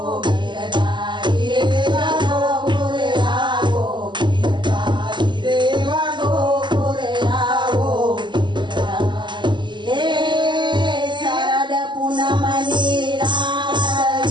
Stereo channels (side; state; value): left; late; 0.22 ms